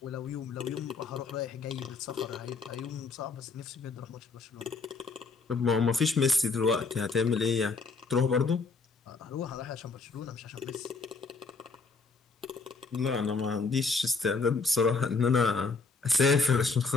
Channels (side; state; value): right; quieter; 4.3 dB